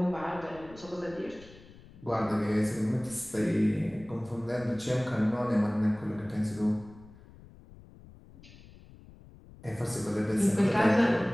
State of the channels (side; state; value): left; noise; rumble, 21 dB below the sound